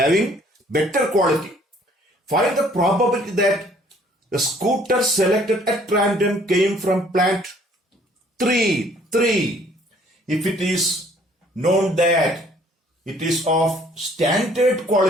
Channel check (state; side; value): normal; both; correlation 0.59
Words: better quality. Find the probability that the scooter selected at random came from plant 3. If it is known that it is of standard